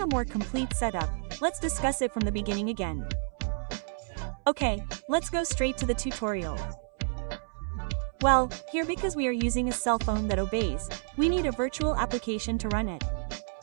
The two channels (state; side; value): silent; left; 58 dB below the other